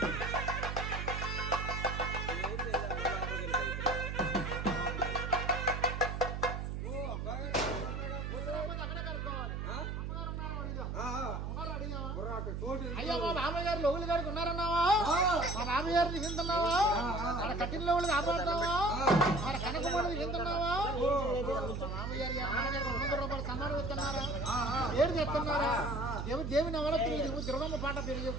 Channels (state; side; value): noise; right; hum, 4 dB below the sound